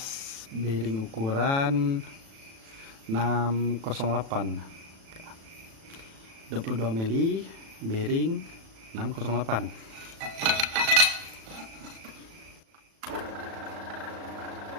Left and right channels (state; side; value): late; left; 36 ms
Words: bearing ukuran 608, 22 mili bearing 608.